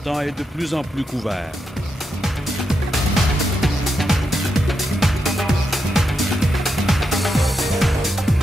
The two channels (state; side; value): normal; both; correlation 0.84